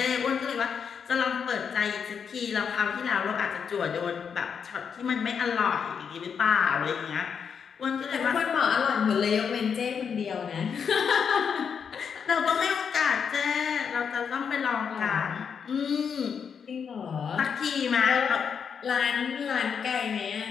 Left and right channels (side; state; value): right; quieter; 6.8 dB